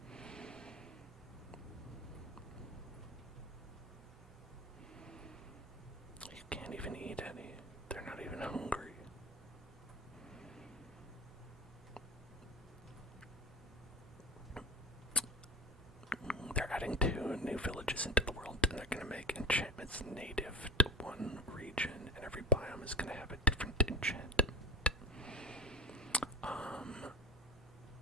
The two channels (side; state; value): both; normal; correlation 0.31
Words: You can't even eat any. They're not even hungry. They're adding 2 new villages into the world, and they're going to make enchantments native to one region, and every biome is going to have a different enchantment.